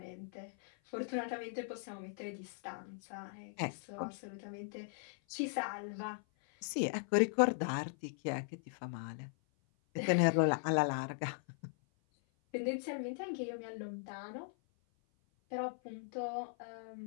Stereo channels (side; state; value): right; silent; 52 dB below the other